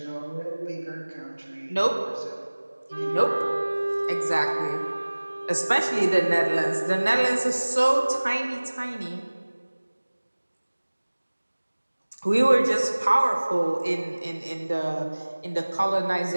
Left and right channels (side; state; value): both; inverted; correlation -1.00